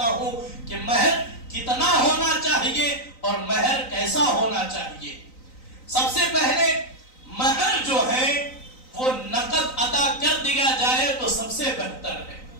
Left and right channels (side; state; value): right; late; 3.9 ms